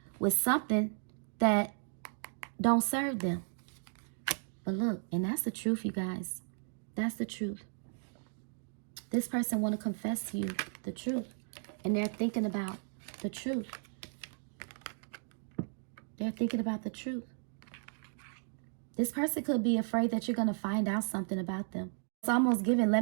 with something that don't serve them. But look, and that's the truth, you guys. That's the truth. This person want to confess to you the truth. And they're thinking about the truth. They're thinking about the truth. This person could be afraid that you're going to find out something about them. It's almost giving,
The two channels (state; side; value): silent; left; 55 dB below the other